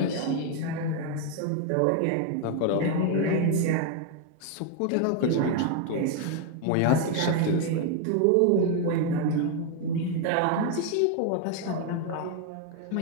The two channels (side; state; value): both; different; correlation 0.01